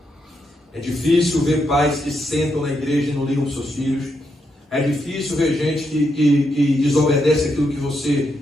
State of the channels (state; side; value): normal; both; correlation 0.81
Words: É difícil ver pais que sentam na igreja e não ligam para os seus filhos. É difícil ver gente que desobedece aquilo que você